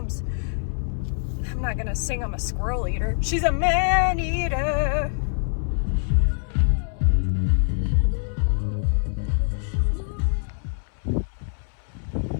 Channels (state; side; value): silent; right; 62 dB below the other